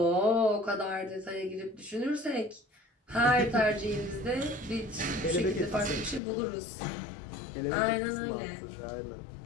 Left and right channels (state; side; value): drops out; right; at 6.2 s